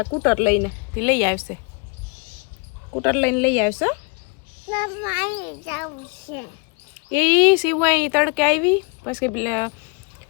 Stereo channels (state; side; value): quieter; right; 33.5 dB